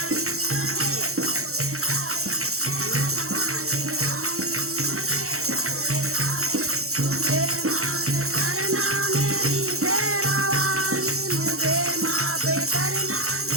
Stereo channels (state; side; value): late; left; 0.63 ms